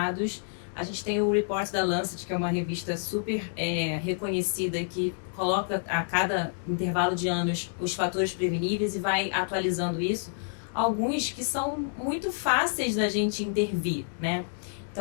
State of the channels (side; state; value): right; silent; digital silence